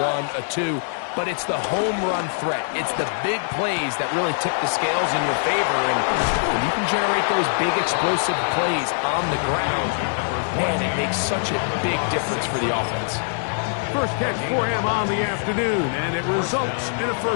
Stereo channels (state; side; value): silent; right; digital silence